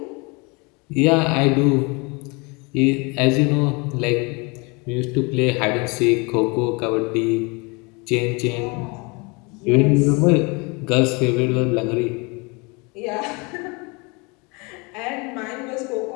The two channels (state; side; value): quieter; right; 29.1 dB